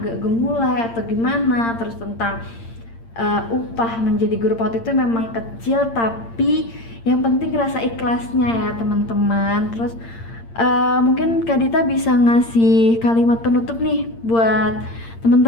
agak gemulai atau gimana, terus tentang upah menjadi guru PAUD itu memang kecil tapi yang penting rasa ikhlasnya ya teman-teman. Terus mungkin Kak Dita bisa ngasih kalimat penutup nih buat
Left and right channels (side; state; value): right; late; 8.7 ms